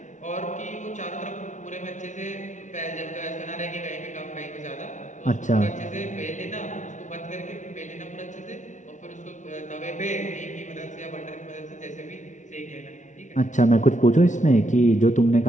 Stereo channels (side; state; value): right; late; 0.36 ms